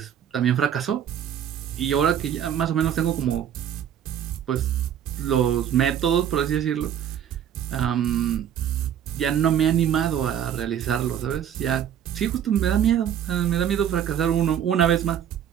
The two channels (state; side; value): quieter; left; 9.6 dB